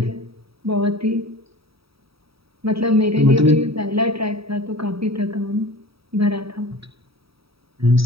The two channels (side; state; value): left; late; 0.76 ms